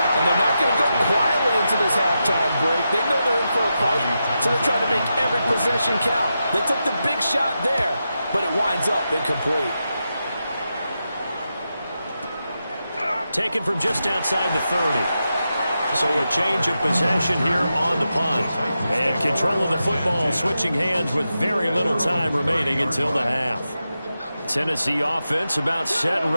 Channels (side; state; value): both; inverted; correlation -0.88